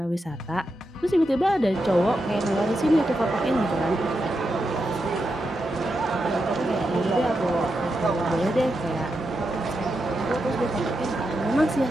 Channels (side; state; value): both; normal; correlation 0.86